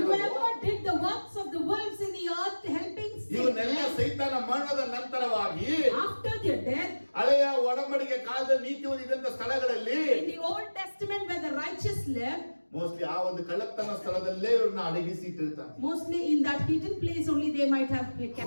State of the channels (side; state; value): both; inverted; correlation -1.00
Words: Whoever did the works of the wolves in the earth, helping ಇವನ್ನೆಲ್ಲ Satan, ಸೈತಾನ ಮರಣದ ನಂತರವಾಗಿ after their death, ಹಳೆಯ ಒಡಂಬಡಿಕೆ ಕಾಲದ ನೀತಿವಾದ ಇದ್ದಂತ ಸ್ಥಳಗಳಲ್ಲಿ in the Old Testament where the righteous live, mostly ಆ ಒಂದು ಕಳ್ಳತನ ಸ್ಥಳದಲ್ಲೇ ಇವ್ರನ್ನ ಅಡಗಿಸಿ ಇಟ್ಟಿರ್ತಾನೆ. mostly in that hidden place only they might have kept.